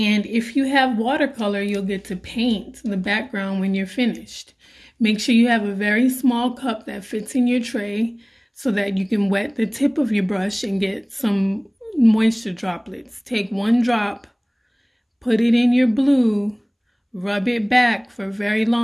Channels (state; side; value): identical; both; correlation 1.00